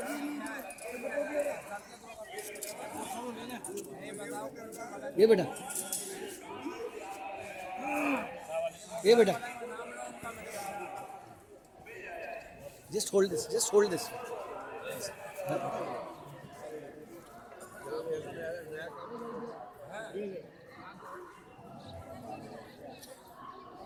ये बेटा ये बेटा just hold this these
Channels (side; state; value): both; identical; correlation 1.00